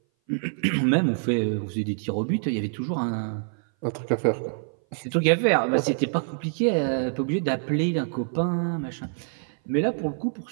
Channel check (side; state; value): left; silent; 58 dB below the other